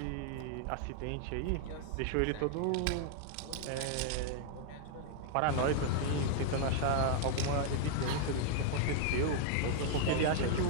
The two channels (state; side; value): different; both; correlation -0.01